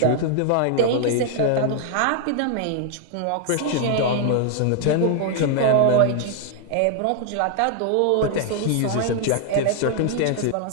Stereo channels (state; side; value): different; both; correlation 0.00